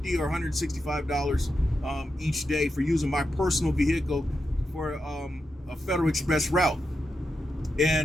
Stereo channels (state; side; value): normal; both; correlation 0.87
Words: or $165 each day for using my personal vehicle for a Federal Express route.